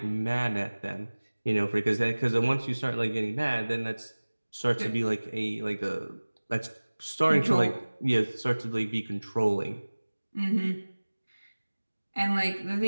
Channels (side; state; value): both; inverted; correlation -1.00